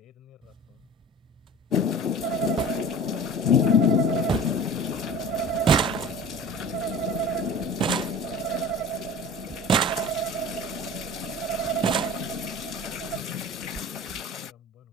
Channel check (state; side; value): normal; both; correlation 0.39